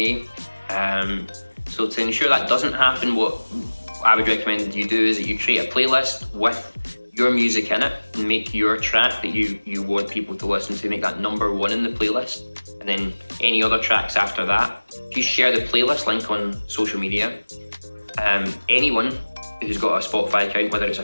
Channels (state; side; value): inverted; both; correlation -1.00